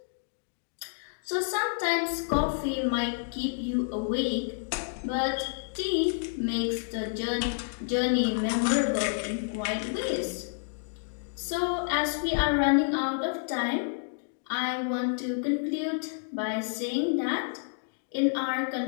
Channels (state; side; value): silent; right; digital silence